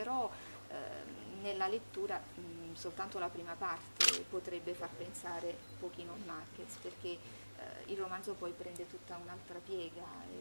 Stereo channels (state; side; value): inverted; both; correlation -1.00